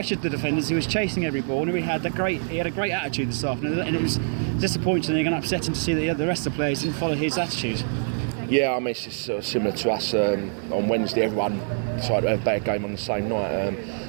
the defenders. He was chasing every ball, and he had a great attitude this afternoon. And it was disappointing and upsetting to see that the rest of the players didn't follow his attitude. Yeah, I mean, it's just sort of similar to us on Wednesday. Everyone decided to have a bad game on the same night.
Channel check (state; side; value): silent; left; digital silence